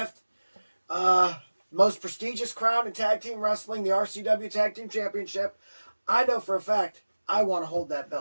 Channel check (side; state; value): both; inverted; correlation -1.00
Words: Most prestigious crown in tag team wrestling, the RCW Tag Team Championship. I know for a fact I want to hold that